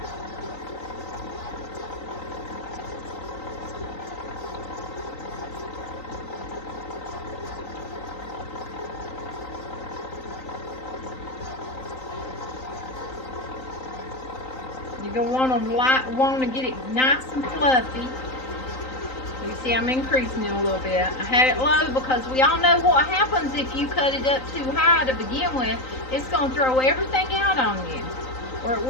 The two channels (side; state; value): right; late; 3.9 ms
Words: You're going to want to get it nice and fluffy. You see I'm increasing it a little bit. I had it low because we all know what happens if you cut it up too high to begin with. It's going to throw everything out on you. Or it